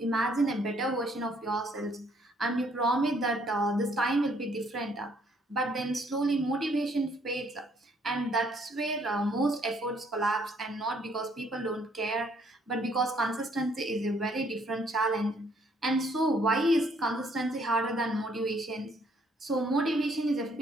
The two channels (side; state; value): both; normal; correlation 0.66